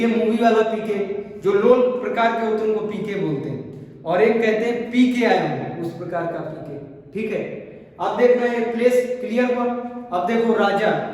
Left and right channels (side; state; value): both; identical; correlation 1.00